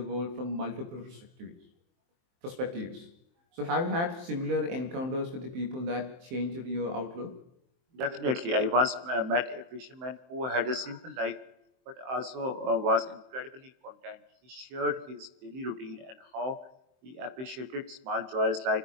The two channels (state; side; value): late; left; 23 ms